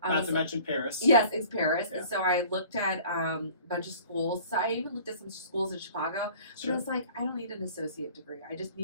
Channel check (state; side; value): inverted; both; correlation -0.48